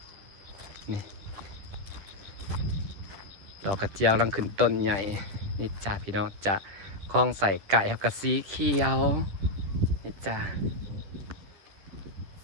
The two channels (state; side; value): late; left; 10 ms